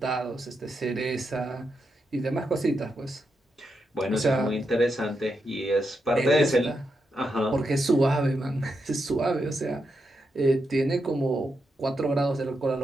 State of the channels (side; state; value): both; normal; correlation 0.84